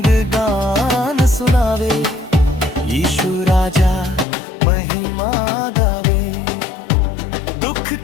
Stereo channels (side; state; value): right; drops out; at 4.2 s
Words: गान सुनावे, यीशु राजा महिमा गावे। दुख